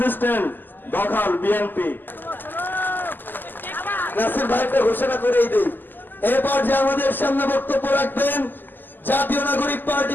স্ট্যান্ড দখল বিএনপি। নাসির ভাইকে ঘোষণা করেই দেই। এবার যে আমাদের সামনে বক্তব্য রাখবেন জাতীয় নাগরিক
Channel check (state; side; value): late; right; 0.090 ms